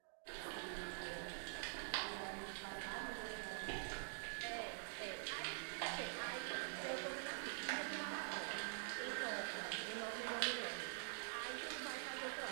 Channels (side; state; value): left; silent; digital silence